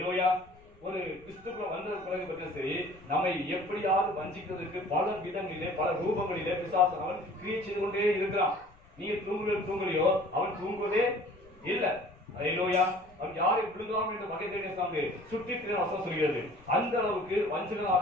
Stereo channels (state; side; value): noise; left; rumble, 27 dB below the sound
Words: ஒரு கிறிஸ்துக்குள்ள வந்த பிறகு பற்றி சரி, நம்மை எப்படியாவது வஞ்சிக்கிறதுக்கு பல விதங்களிலே பல ரூபங்களிலே பிசாசு அவன் கிரியை செய்து கொண்டே இருக்கிறான். நீங்க தூங்கலையோ அவன் தூங்குவதே இல்லை. ஹalleluya. அவன் யாரை விழுகாமல் என்ற வகை தேடிய சாமி சுற்றி வசனம் சொல்கிறது. அந்த அளவுக்கு